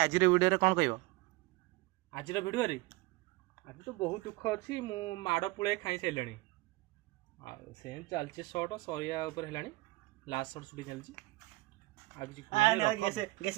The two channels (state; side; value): quieter; left; 21.6 dB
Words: भिडियो कौन कह आज भिडियो आज तो बहुत दुख अच्छी मु माड़ पुଳେ खाई सारे से चलती सर्ट सरिया लास्ट सर्ट सुटी चलती